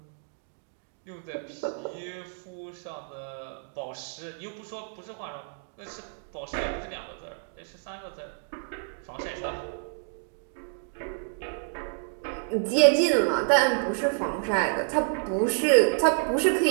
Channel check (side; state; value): left; silent; 59 dB below the other